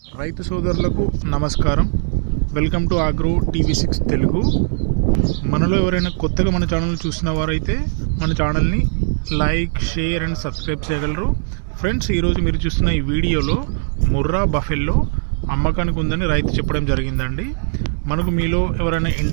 రైతు సోదరులకు నమస్కారం. వెల్కమ్ టు ఆగ్రో టీవీ6 తెలుగు. మనలో ఎవరైనా కొత్తగా మన ఛానల్ చూసిన వారైతే మన ఛానల్ని లైక్, షేర్ అండ్ సబ్స్క్రైబ్ చేయగలరు. ఫ్రెండ్స్, ఈరోజు మీరు చూస్తున్న ఈ వీడియోలో ముర్రా బఫెల్లో అమ్మకానికి ఉందని రైతు చెప్పడం జరిగిందండి. మనకు మీలో ఎవరైనా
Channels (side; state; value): left; silent; 66 dB below the other